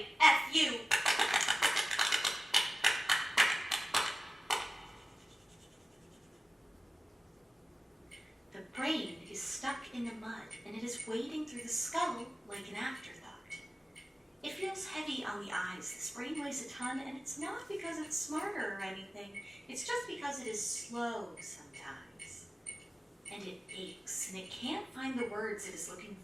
The brain is stuck in the mud, and it is wading through the skull like an afterthought. It feels heavy on the eyes. This brain weighs a ton, and it's not because it's smarter or anything. It's just because it is slow sometimes. And it aches, and it can't find the words it is looking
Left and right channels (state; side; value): normal; both; correlation 0.96